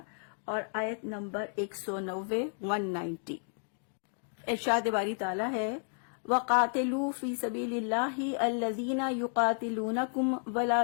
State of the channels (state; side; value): silent; right; 56 dB below the other